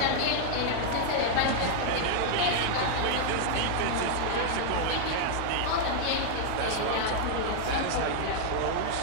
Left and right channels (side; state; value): both; different; correlation -0.01